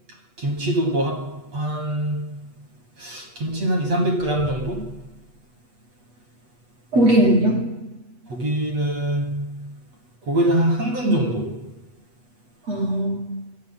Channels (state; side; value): late; left; 8.2 ms